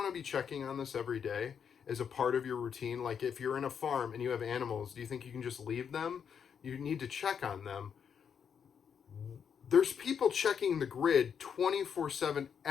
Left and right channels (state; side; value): quieter; right; 7.4 dB